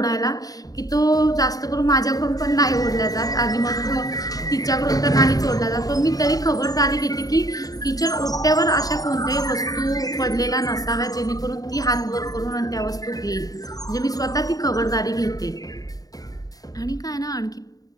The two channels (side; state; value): right; late; 0.18 ms